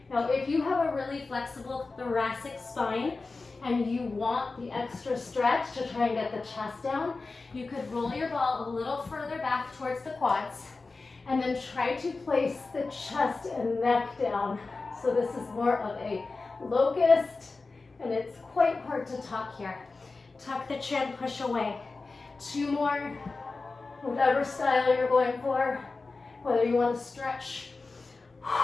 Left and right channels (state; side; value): quieter; right; 3.8 dB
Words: Now, if you have a really flexible thoracic spine and you want the extra stretch to try and get the chest down, you could roll your ball a little further back towards the quads and then try to place the chest and neck down. So this is more of a locust, and it's quite hard to tuck here. Tuck the chin, push away. 2 more, whatever style you're going for, whether you want to stretch